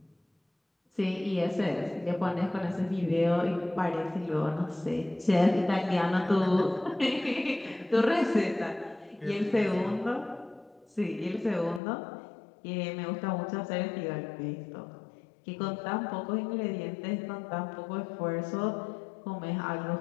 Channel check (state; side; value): drops out; right; at 11.8 s